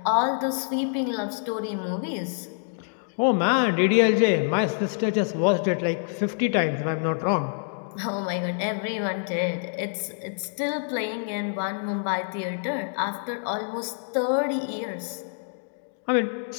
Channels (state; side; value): silent; right; digital silence